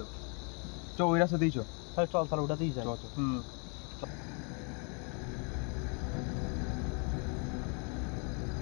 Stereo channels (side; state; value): right; quieter; 36.7 dB